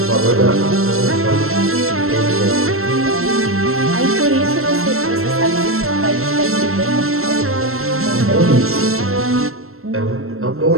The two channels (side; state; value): left; late; 0.62 ms